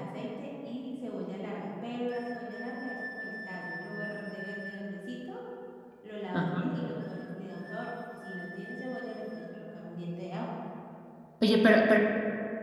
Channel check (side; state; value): both; identical; correlation 1.00